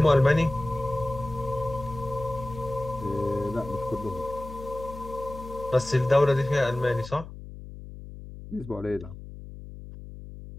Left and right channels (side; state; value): left; noise; hum, 13 dB below the sound